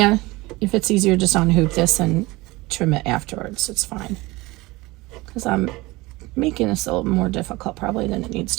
if it's easier, just unhoop this and trim it afterwards. It's fine. Because I'm making this a little more difficult probably than it needs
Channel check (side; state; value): left; quieter; 21.4 dB